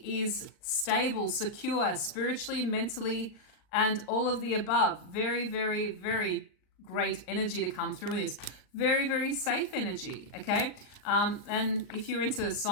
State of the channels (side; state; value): right; late; 39 ms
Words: is stable, secure, spiritually, mentally, and all of the above. Very, very, very great energy to come through with this. Very, very safe energy, okay? And if you're into